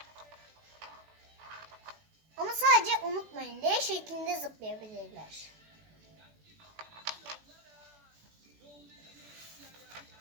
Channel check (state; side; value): late; left; 19 ms